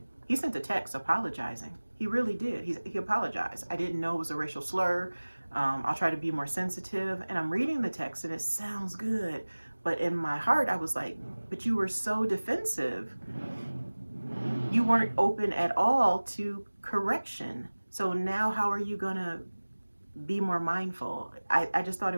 he sent a text apologizing. He really did. He apologized. I didn't know it was a racial slur. I'll try to be more sensitive. And I'm reading the text and it sounds good. But in my heart, I was like, but you were so defensive. You weren't open at all to correction. So now how are you gonna be more mindful? I just thought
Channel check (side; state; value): both; inverted; correlation -1.00